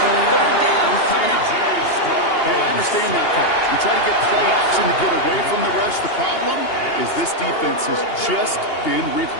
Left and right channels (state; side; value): late; right; 2.8 ms